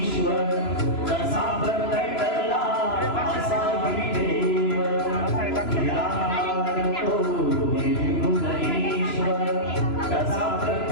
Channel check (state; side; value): late; right; 3.0 ms